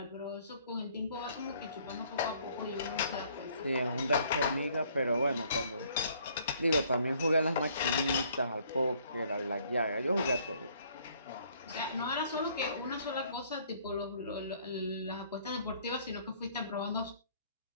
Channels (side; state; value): both; inverted; correlation -0.62